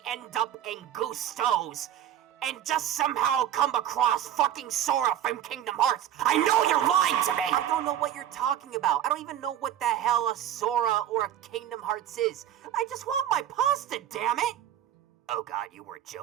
end up in Gusto's and just somehow come across fucking Sora from Kingdom Hearts? I know you're lying to me! I don't know what you're talking about. I don't even know what the hell a Sora or a Kingdom Hearts is. I just want my pasta, damn it! Oh god, you weren't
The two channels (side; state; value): left; quieter; 11.1 dB